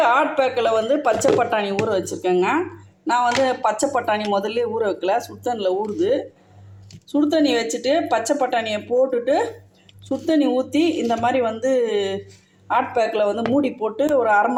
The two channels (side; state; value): both; identical; correlation 1.00